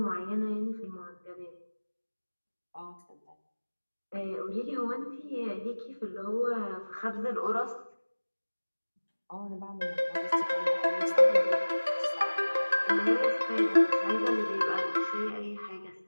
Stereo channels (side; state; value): both; inverted; correlation -1.00